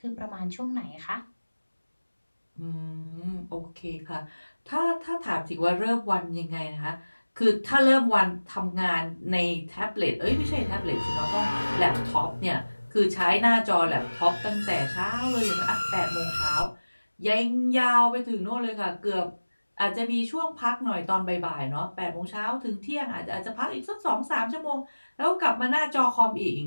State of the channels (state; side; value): inverted; both; correlation -1.00